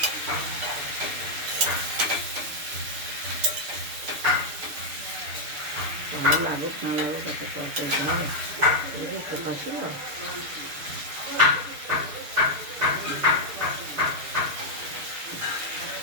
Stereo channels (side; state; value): left; late; 6.7 ms